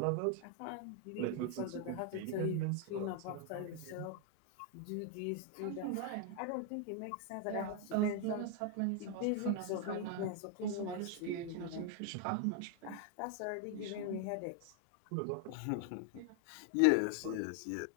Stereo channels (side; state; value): both; different; correlation 0.00